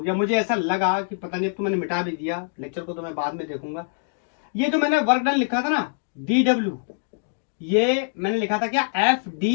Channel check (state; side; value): silent; right; digital silence